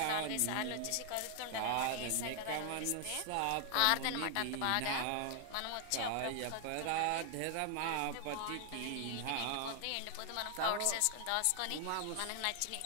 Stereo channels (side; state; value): both; different; correlation 0.00